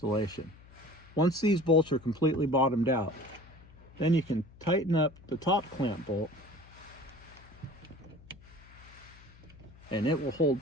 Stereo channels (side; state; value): left; noise; hum, 22 dB below the sound